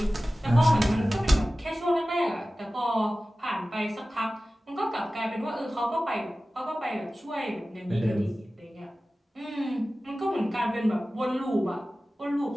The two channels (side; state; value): both; normal; correlation 0.96